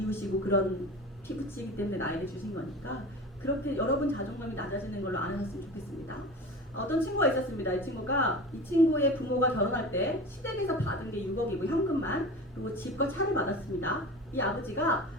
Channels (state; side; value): normal; both; correlation 0.33